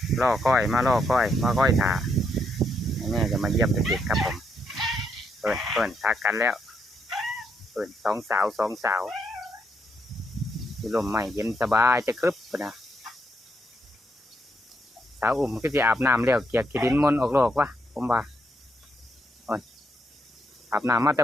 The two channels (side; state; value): both; normal; correlation 0.77